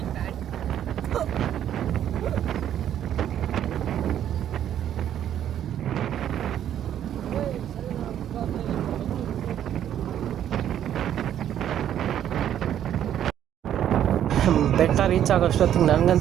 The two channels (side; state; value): left; quieter; 10.5 dB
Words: ಬೆಟ್ಟ ರೀಚ್ ಆಗೋಷ್ಟೊತ್ತಿಗೆ